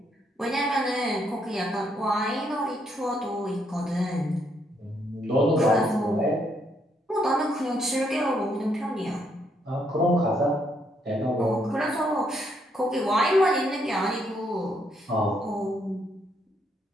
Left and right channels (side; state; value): both; normal; correlation 0.74